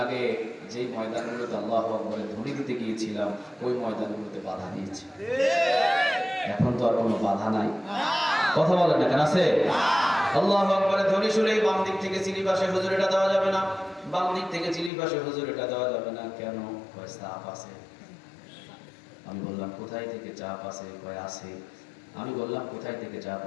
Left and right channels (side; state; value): right; drops out; at 14.9 s